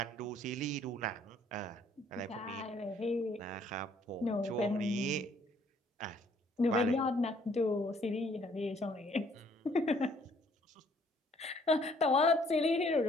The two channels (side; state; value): both; normal; correlation 0.63